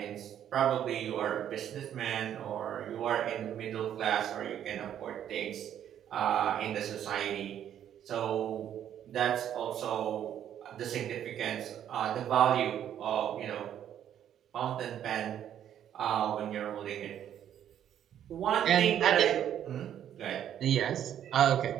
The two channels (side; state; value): left; quieter; 10.2 dB